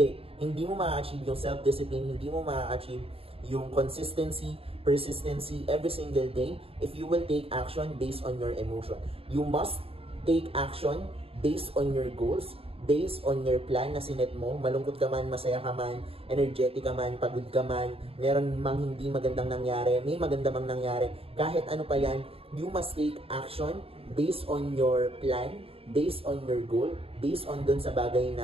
mo ma-achieve yung self-discipline, hindi mo ma-achieve yung consistency, persistency every single day if you will take action based on your emotion. You must take action based on your goals, based on your plan na sinet mo. Malungkot ka man, masaya ka man, energetic ka man, pagod ka man, meron mang hindi magandang nangyari, may maganda mang nangyari, kahit ano pa yan, you must take action based on your plan, based on your goal, based on dun sa bagay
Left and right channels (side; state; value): left; late; 0.28 ms